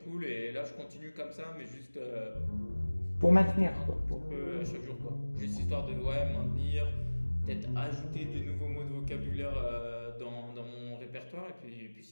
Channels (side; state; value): both; inverted; correlation -1.00